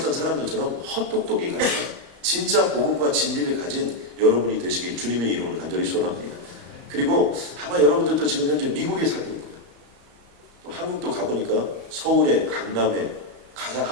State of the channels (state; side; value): late; left; 34 ms